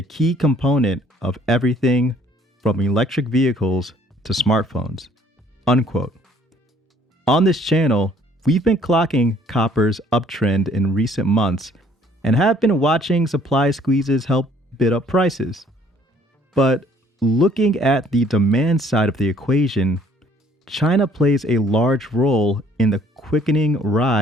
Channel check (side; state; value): both; normal; correlation 0.59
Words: key component of everything from electric vehicles to smartphones. Unquote. On this channel, we've been clocking copper's uptrend in recent months and have been watching supply squeezes help bid up prices. But looking at the demand side of the equation, China plays a large role in the quickening